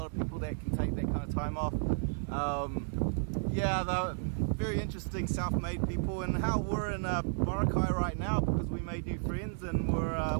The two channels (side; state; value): left; silent; digital silence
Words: of people that can take that kind of time off. Yeah, they're very interesting self-made people, and how we're in Boracay right now because we made new friends, and we're